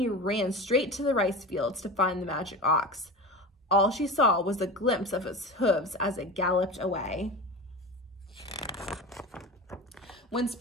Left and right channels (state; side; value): normal; both; correlation 0.29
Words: ran straight to the rice fields to find the magic ox. All she saw was a glimpse of its hooves as it galloped away. When